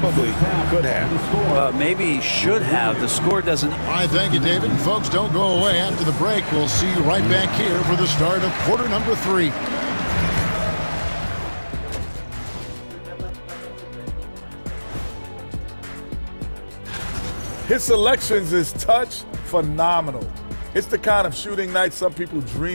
could have. Maybe should have. The score doesn't. All right, thank you, David. And folks, don't go away. After the break, we'll see you right back here for the start of quarter number 3. His selections is touch phenomenal. It's the kind of shooting night some people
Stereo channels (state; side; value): inverted; both; correlation -1.00